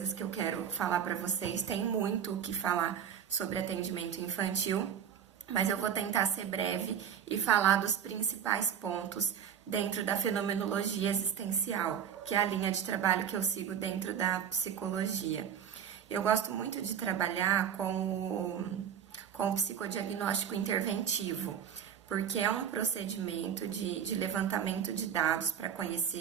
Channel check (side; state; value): left; quieter; 8.5 dB